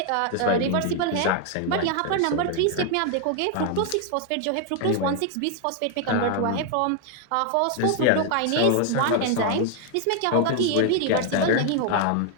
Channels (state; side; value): different; both; correlation 0.00